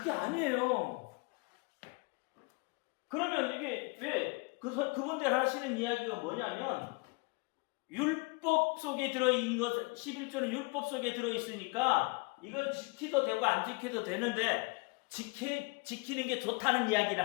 아니에요. 그러면 이게 왜 그분들 하시는 이야기가 뭐냐면 율법 속에 들어있는 것, 11조는 율법 속에 들어있으니까 이건 지키도 되고 안 지켜도 되는데 지키는 게 좋다는 이야기를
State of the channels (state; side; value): quieter; right; 28.4 dB